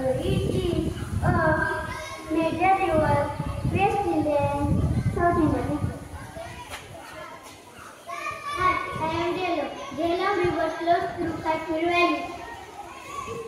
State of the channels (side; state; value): both; identical; correlation 1.00